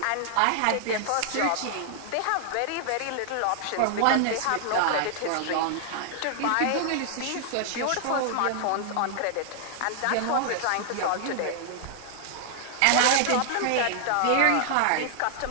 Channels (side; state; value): both; different; correlation 0.00